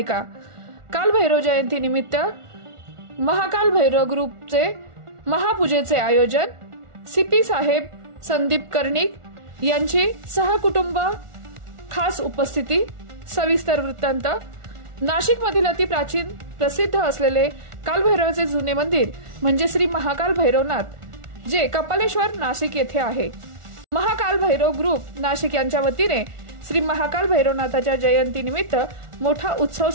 काल भैरव जयंती निमित्त महाकाल भैरव ग्रुपचे महापूजेचे आयोजन। सीपी साहेब संदीप कर्णिक यांची सहकुटुंब खास उपस्थिती। सविस्तर वृत्तांत। नाशिक मधील अति प्राचीन प्रसिद्ध असलेले कालभैरवाचे जुने मंदिर म्हणजे श्री महाकाल भैरवनाथ, जे कपालेश्वर नाशिक येथे आहे। महाकाल भैरव ग्रुप नाशिक यांच्या वतीने श्री महाकाल भैरवनाथाच्या जयंती निमित्त मोठा उत्सव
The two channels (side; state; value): left; late; 1.4 ms